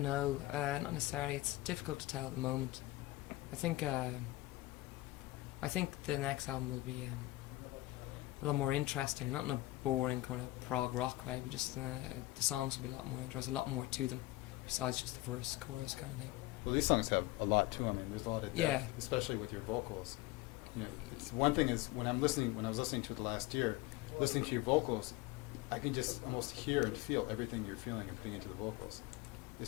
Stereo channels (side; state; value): right; quieter; 18.7 dB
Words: know, not necessarily. It's difficult to tell at the moment. I think the next album will be a lot more interesting, not in a boring kind of prog rock way, but just the songs will be a lot more interesting, a lot more to them, besides just the verse, chorus kind of thing. Well, these songs have a lot to them. I mean, there's a lot of depth, Yeah. especially with your vocals. It's one thing is when I was listening to it last year, listening to your vocals, I can just almost hear and feel everything you're feeling and putting into the vocals.